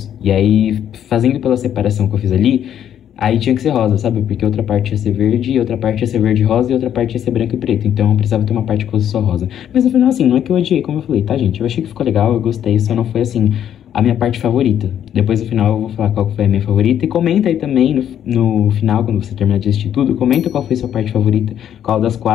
E aí, fazendo pela separação que eu fiz ali, aí tinha que ser rosa, sabe? Porque outra parte ia ser verde, outra parte ia ser verde e rosa, e outra parte ia ser branco e preto. Então eu precisava ter uma parte que fosse só rosa. Mas no final, assim, não é que eu odiei, como eu falei, tá, gente? Eu achei que ficou legal, eu gostei, só não foi, assim, a minha parte favorita. Depois no final eu vou falar qual foi a minha favorita. E comenta aí também no final, quando você terminar de assistir tudo, comenta qual foi a sua parte favorita, qual das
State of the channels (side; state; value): right; quieter; 10.0 dB